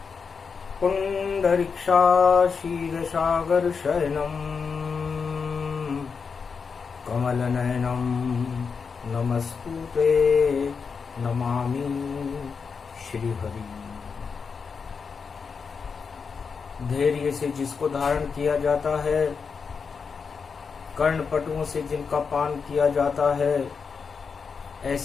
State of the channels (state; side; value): quieter; right; 5.6 dB